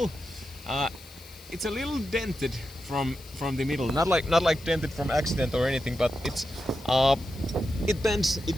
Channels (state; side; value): noise; left; hiss, 20 dB below the sound